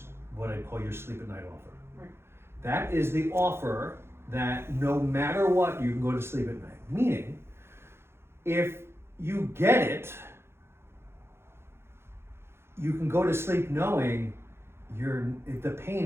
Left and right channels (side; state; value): left; late; 0.12 ms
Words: what I call your sleep at night offer. Right. That is the offer that no matter what, you can go to sleep at night. Meaning, if you get it, you can go to sleep knowing the